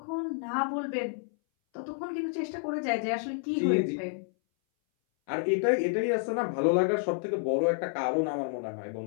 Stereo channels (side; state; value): right; silent; 58 dB below the other